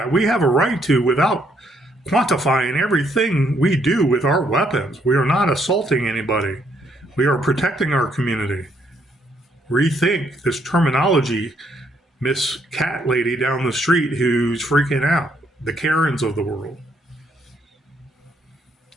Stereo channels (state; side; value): normal; both; correlation 0.71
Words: We have a right to without quantifying everything we do with our weapons. We are not assaulting anybody. We are protecting our community. Rethink this terminology, Miss Cat Lady down the street who's freaking out. The Karens of the world.